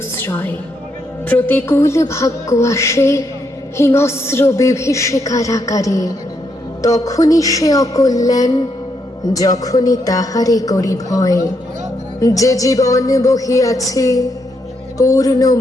প্রতিকূল ভাগ্য আসে হিংস্র বিভীষিকার আকারে, তখনই সে অকল্যাণ, যখনই তাহারে করি ভয়। যে জীবন বহিয়াছে পূর্ণ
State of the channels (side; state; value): both; normal; correlation 0.78